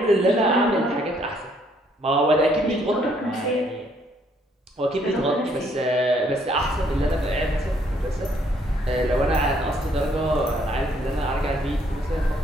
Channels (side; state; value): both; normal; correlation 0.67